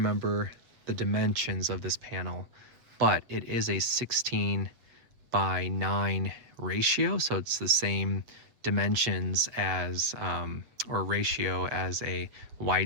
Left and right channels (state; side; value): late; left; 8.0 ms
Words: the dimensions of this panel, but it is a 16 by 9 ratio, so it's the same dimensions as or ratio as a